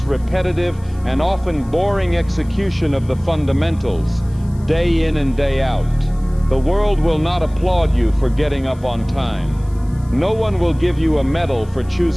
repetitive, and often boring execution of the fundamentals, day in and day out. The world will not applaud you for getting up on time. No one will give you a medal for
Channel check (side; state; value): left; noise; hiss, 28 dB below the sound